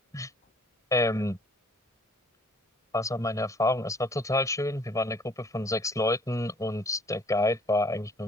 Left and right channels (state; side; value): normal; both; correlation 0.57